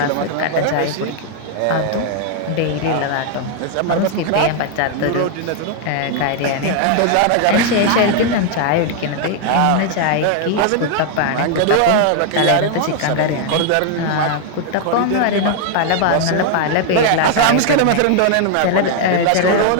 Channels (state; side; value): different; both; correlation 0.00